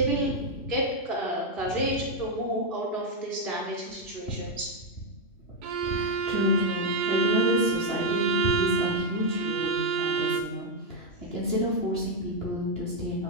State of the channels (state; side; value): late; right; 2.9 ms